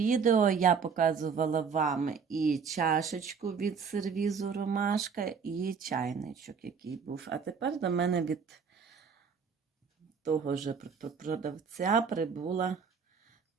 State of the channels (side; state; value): left; quieter; 6.0 dB